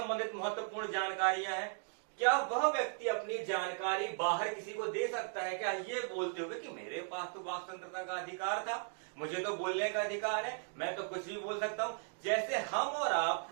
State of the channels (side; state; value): left; silent; 53 dB below the other